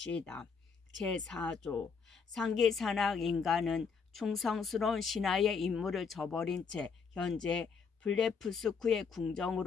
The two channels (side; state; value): right; quieter; 5.6 dB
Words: 제4조. 상기 산악 인간은 충성스러운 신하의 임무를 저버린 채 현재 블레프스크의